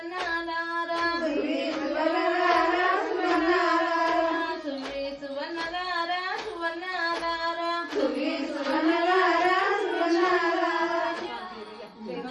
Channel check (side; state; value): both; identical; correlation 1.00